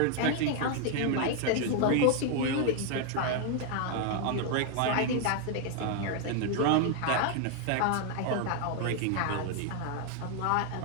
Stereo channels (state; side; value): different; both; correlation 0.01